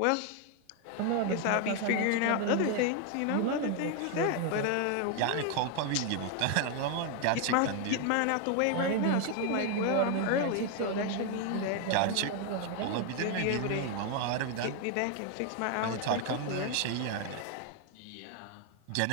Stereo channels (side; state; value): both; different; correlation 0.01